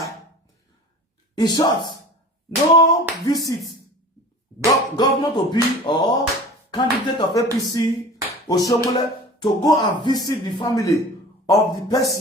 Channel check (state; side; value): normal; both; correlation 0.40